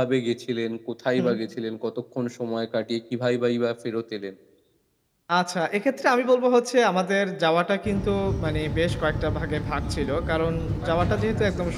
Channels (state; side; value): identical; both; correlation 1.00